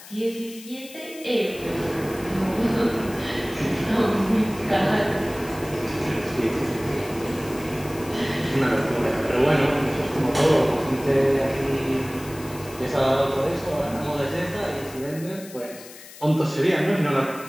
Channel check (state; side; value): noise; left; hiss, 17 dB below the sound